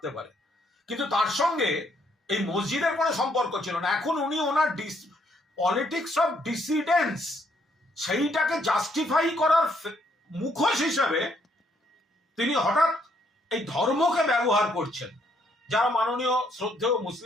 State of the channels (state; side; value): normal; both; correlation 0.71